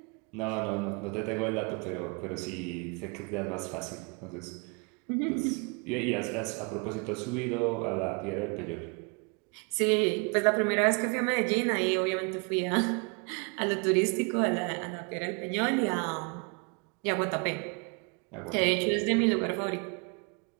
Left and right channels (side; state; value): left; quieter; 33.3 dB